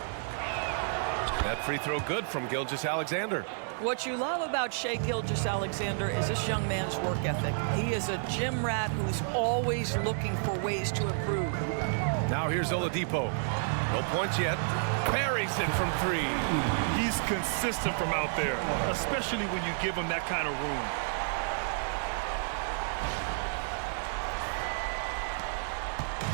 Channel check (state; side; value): silent; left; 57 dB below the other